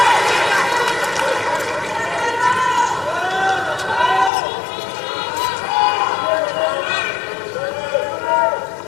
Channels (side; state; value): right; drops out; at 4.3 s